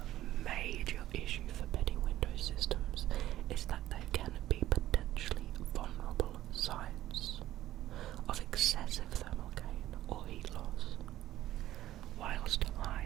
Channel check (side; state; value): left; quieter; 14.1 dB